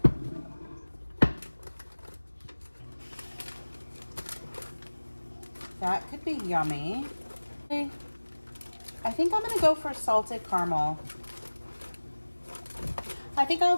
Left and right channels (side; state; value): both; inverted; correlation -1.00